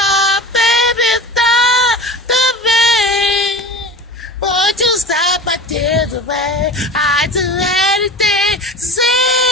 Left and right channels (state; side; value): normal; both; correlation 0.34